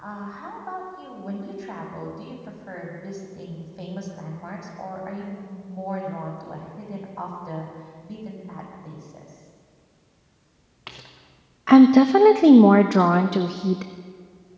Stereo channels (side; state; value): both; identical; correlation 1.00